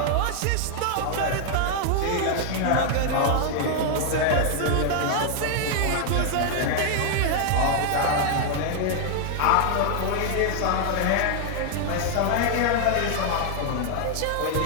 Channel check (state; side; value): different; both; correlation 0.00